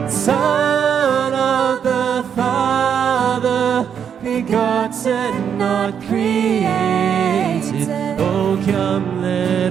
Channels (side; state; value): left; quieter; 7.9 dB